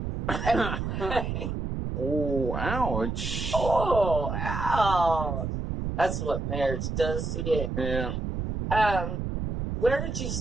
Anyway. Oh, ouch. Oh, ouch. That's what marriage does to you. Yeah. Where did you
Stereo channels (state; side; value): noise; right; rumble, 3 dB below the sound